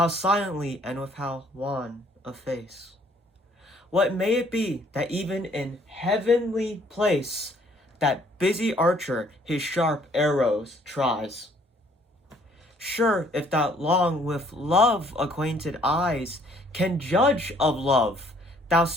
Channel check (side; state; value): both; normal; correlation 0.61